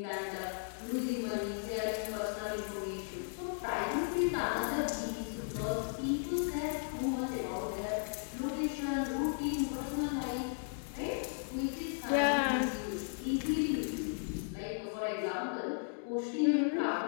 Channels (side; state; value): right; silent; digital silence